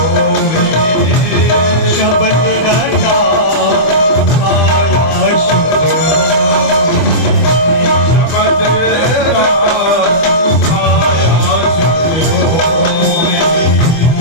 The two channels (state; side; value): late; right; 25 ms